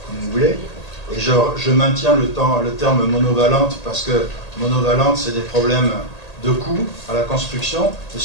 comme vous voulez. Et je maintiens le terme monovalente parce que monovalente, c'est des problèmes de coûts à la construction et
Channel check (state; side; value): late; right; 1.8 ms